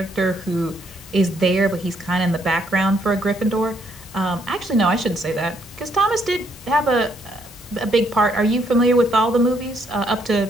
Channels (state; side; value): normal; both; correlation 0.71